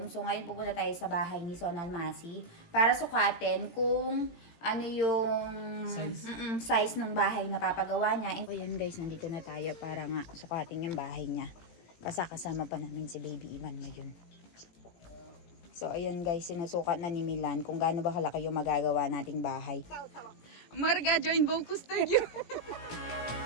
So, ngayon pupunta tayo sa bahay ni Son Almasi para sukatin kung ano yung size ng bahay na papagawa niya. And, ayan guys, nandito na tayo para nga sukatin yung bahay niya. Kasama pa namin si Baby Ivan ngayon. So, ayan guys, sinusukat na ni Milan kung gaano ba kalaki yung magagawa nating bahay. Marga, join Vocus Studio!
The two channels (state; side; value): late; right; 18 ms